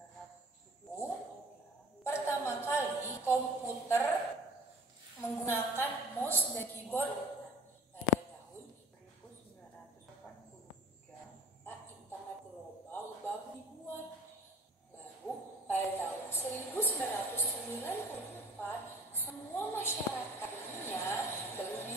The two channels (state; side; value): normal; both; correlation 0.46